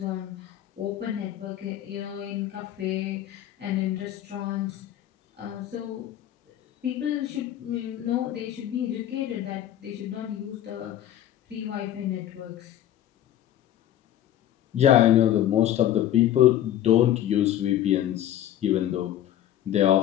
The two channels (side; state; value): right; quieter; 11.8 dB